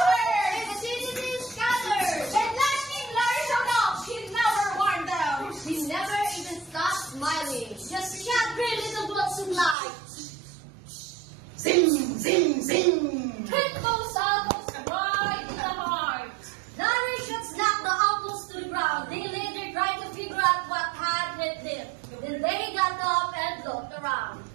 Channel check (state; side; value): drops out; left; at 9.8 s